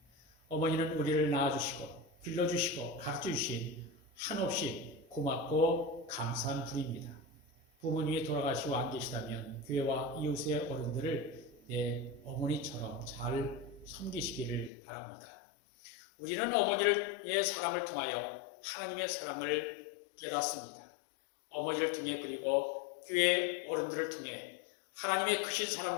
어머니는 우리를 낳아주시고 길러주시고 가르쳐주신 한없이 고맙고 감사한 분입니다. 부모님이 돌아가시고 안 계시다면 교회와 이웃의 어른들을 내 어머니처럼 잘 섬기시기를 바랍니다. 우리는 어머니의 사랑을 통하여 하나님의 사랑을 깨닫습니다. 어머니를 통해 그리고 교회 어른들을 통해 하나님의 크신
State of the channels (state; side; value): drops out; right; at 14.7 s